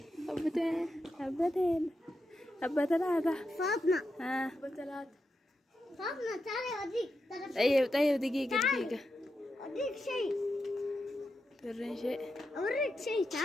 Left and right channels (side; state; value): both; normal; correlation 0.87